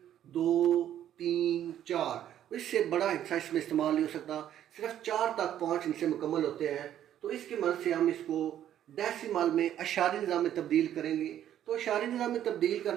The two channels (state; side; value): quieter; left; 11.0 dB